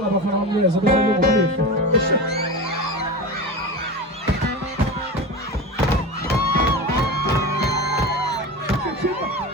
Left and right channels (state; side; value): normal; both; correlation 0.27